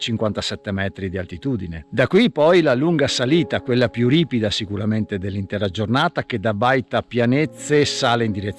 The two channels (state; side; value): identical; both; correlation 1.00